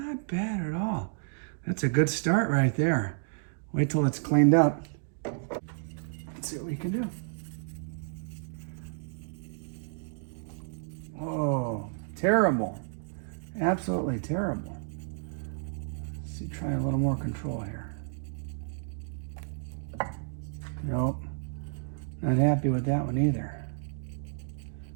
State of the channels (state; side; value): silent; left; digital silence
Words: bad at all. That's a good start right there. Wait till it's cleaned up. Let's see what we can do. Oh, terrible. Absolutely terrible. Let's see, try a little more control here. Nope. Not happy with that one either.